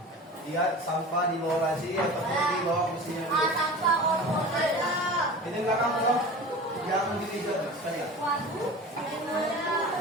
lihat sampah di bawah laci atau di bawah mesinnya dulu. Sampah ada. Ini belakang loh, yang di meja sekalian. Waduh.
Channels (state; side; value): normal; both; correlation 0.36